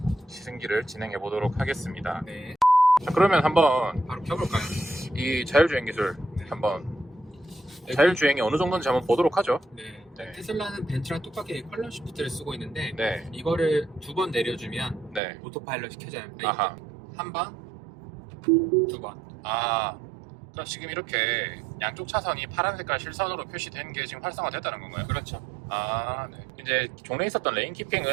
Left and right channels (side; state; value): left; drops out; at 15.2 s